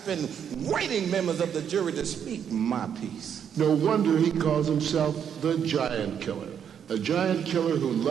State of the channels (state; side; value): quieter; left; 8.3 dB